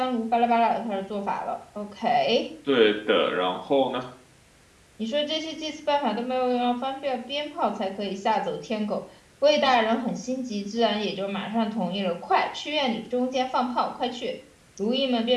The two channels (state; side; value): identical; both; correlation 1.00